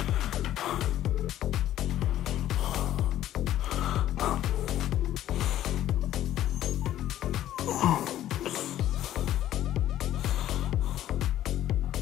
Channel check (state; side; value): quieter; right; 12.7 dB